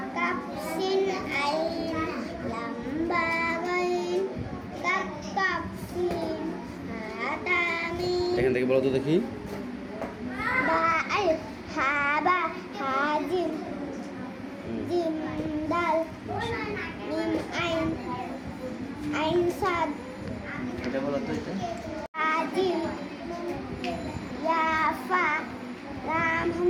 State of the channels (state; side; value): identical; both; correlation 1.00